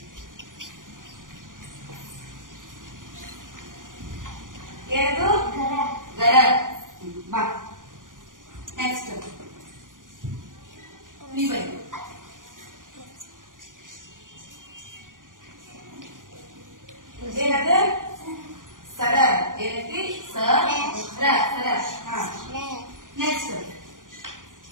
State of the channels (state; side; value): late; left; 0.89 ms